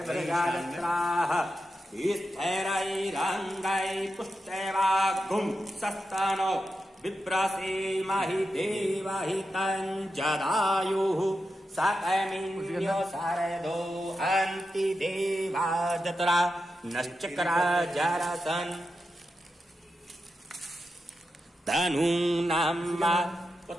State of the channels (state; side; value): normal; both; correlation 0.89